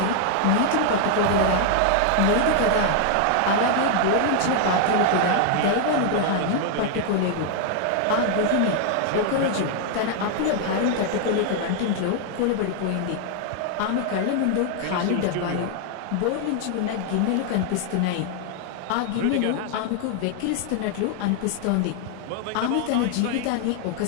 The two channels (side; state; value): both; different; correlation 0.00